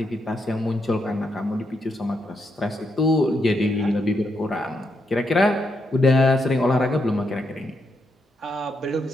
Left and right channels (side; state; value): both; normal; correlation 0.80